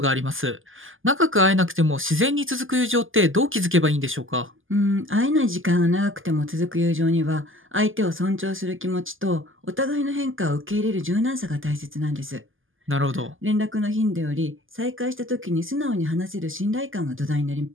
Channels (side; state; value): left; late; 0.58 ms